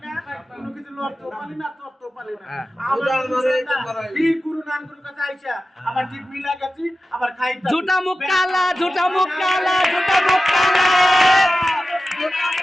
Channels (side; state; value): both; normal; correlation 0.94